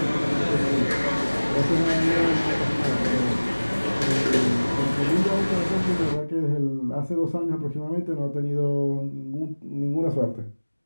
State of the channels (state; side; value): inverted; both; correlation -1.00